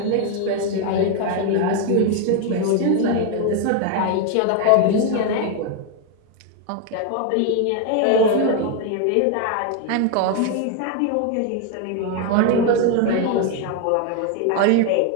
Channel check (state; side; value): different; both; correlation 0.01